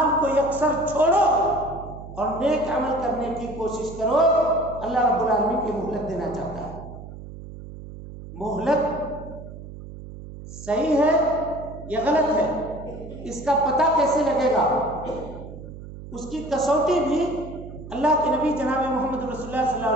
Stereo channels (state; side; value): noise; right; hum, 13 dB below the sound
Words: کو یکسر چھوڑو اور نیک عمل کرنے کی کوشش کرو۔ اللہ رب العالمین کی مہلت دینا چاہتا ہے۔ مہلت صحیح ہے یا غلط ہے، اس کا پتہ کیسے لگے گا؟ اس کی کسوٹی بھی اللہ کے نبی جناب محمد رسول اللہ صلی اللہ